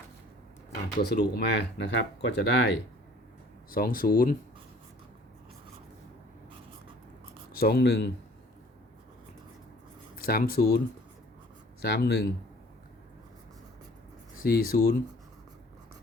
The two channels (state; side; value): normal; both; correlation 0.53